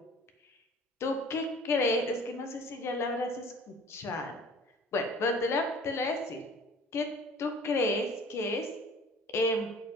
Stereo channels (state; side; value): normal; both; correlation 0.48